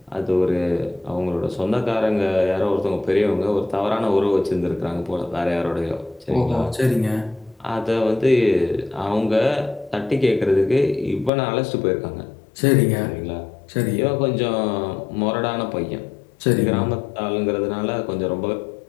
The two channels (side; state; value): right; drops out; at 11.3 s